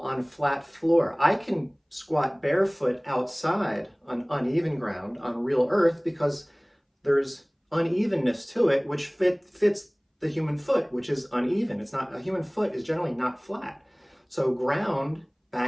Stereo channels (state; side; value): identical; both; correlation 1.00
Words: flat floor. I can squat barefoot outside on uneven ground, on real earth, because there's unevenness to it, which fits the human foot, which is uneven. A human foot is generally not flat. So ground,